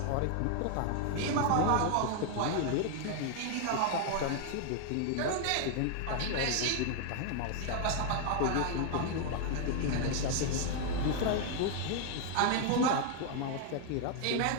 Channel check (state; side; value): different; both; correlation 0.00